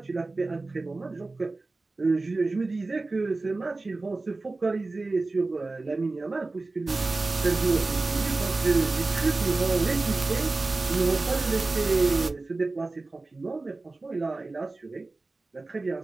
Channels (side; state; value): left; quieter; 3.4 dB